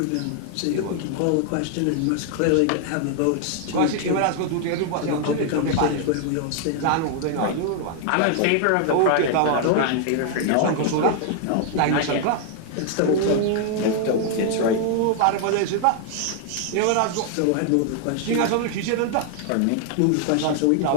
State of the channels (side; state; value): both; different; correlation 0.00